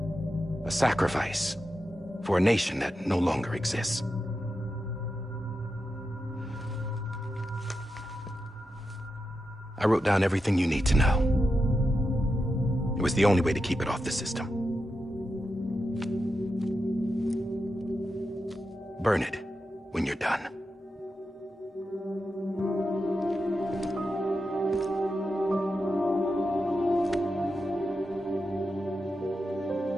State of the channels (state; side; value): normal; both; correlation 0.88